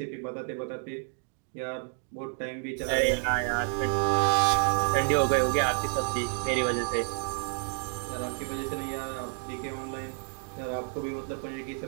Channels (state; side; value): silent; left; 58 dB below the other